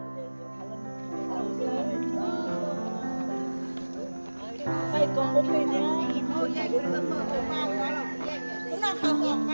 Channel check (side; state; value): both; inverted; correlation -1.00